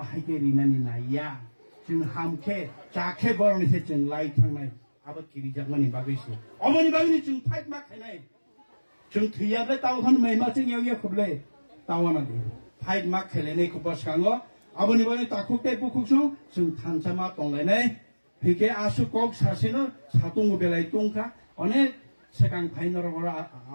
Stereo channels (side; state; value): both; inverted; correlation -1.00